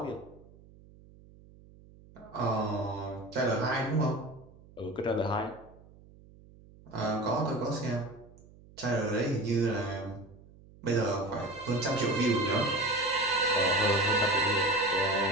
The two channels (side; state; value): right; noise; hum, 23 dB below the sound